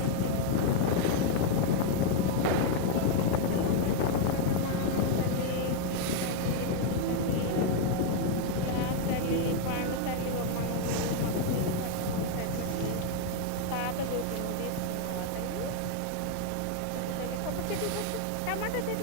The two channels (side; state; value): both; different; correlation 0.00